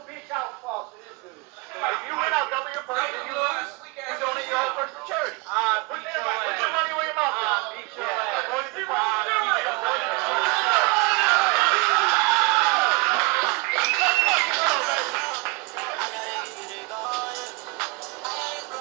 bitch out, false to this dude. If you win, I'll double your purse. If you lose, you donate your whole purse to charity. Put your money where your mouth is. Beat your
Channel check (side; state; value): left; quieter; 28.0 dB